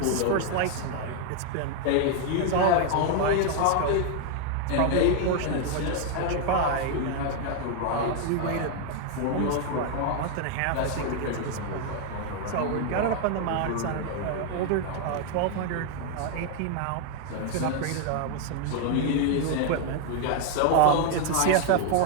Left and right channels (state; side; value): different; both; correlation 0.00